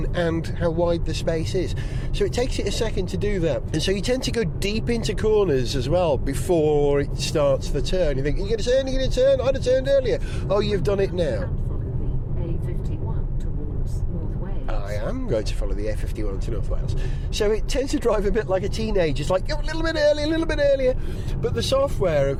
and how wide the space is. So it takes it a second to do that. And so you tend to go deep into corners as well before it starts the turn. You think, you're going to turn, I'd have turned earlier. Oh, you've done it now. I am going to follow the A51 to North Wales. So it tends to drive a bit like a teenager. It's like, a little bit earlier. But the software,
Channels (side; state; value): both; identical; correlation 1.00